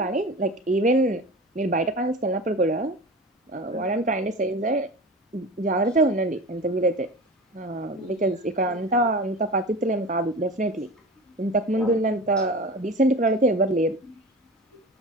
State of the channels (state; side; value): normal; both; correlation 0.32